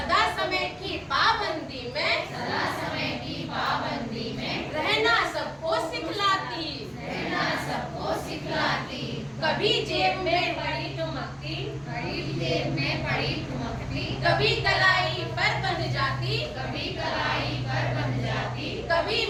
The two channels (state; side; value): identical; both; correlation 1.00